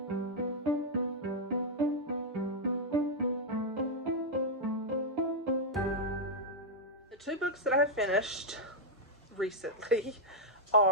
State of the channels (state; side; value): normal; both; correlation -0.04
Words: The two books that I have finished recently